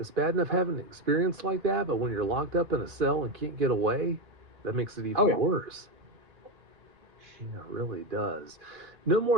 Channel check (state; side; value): late; left; 2.4 ms